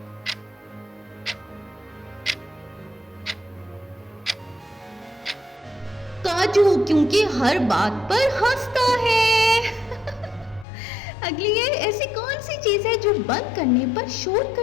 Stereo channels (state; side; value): drops out; right; at 10.7 s